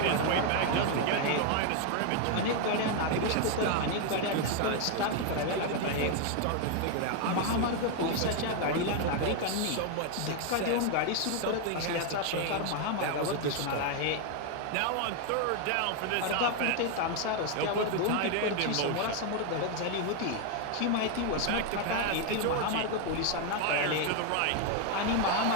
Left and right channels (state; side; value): different; both; correlation 0.01